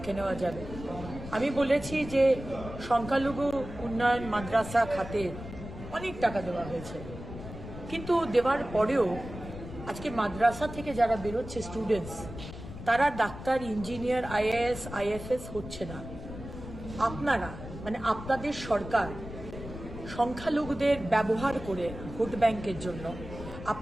নেওয়া যাবে। আমি বলেছি যে সংখ্যালঘু উন্নয়ন মাদ্রাসা খাতে অনেক টাকা দেওয়া হয়েছে, কিন্তু দেওয়ার পরেও আজকে মাদ্রাসা থেকে যারা বেরোচ্ছে স্টুডেন্টস, তারা ডাক্তার, ইঞ্জিনিয়ার, আইএএস, আইএফএস হচ্ছে না। আপনারা মানে আপনাদের সরকার সংখ্যালঘুদের ব্যবহার করে ভোট ব্যাংকের জন্য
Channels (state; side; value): noise; left; rumble, 11 dB below the sound